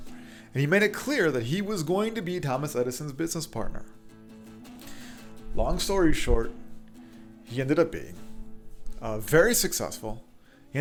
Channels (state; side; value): identical; both; correlation 1.00